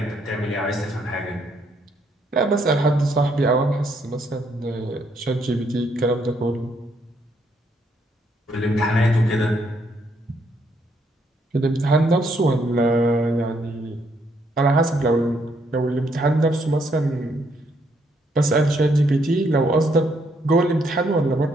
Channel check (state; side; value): normal; both; correlation 0.72